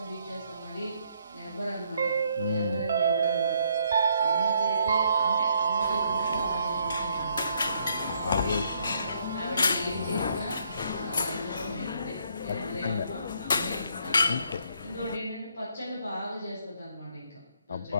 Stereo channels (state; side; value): inverted; both; correlation -0.70